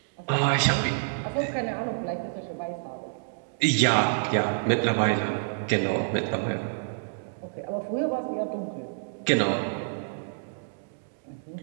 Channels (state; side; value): silent; left; digital silence